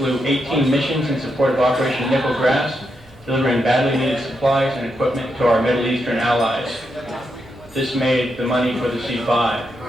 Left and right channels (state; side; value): normal; both; correlation 0.83